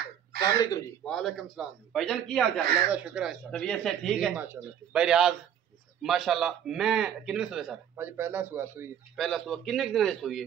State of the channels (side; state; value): left; quieter; 9.4 dB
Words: अस्सलाम वालेकुम जी। वालेकुम सलाम जी। भाईजान की हाल चाल? अल्लाह का शुक्र है सर। तबीयत से ठीक जी, है? माशाल्लाह। भाई रियाज माशाल्लाह। मैं कितने सुए सर? भाजी पहला सुआ सुई पहला सुआ किन्ने दिन दी सुई